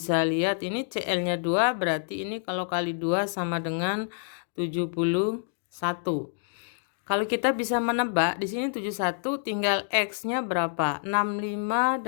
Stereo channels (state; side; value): silent; right; digital silence